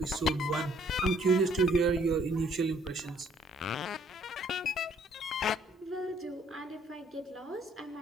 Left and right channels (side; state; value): both; normal; correlation 0.63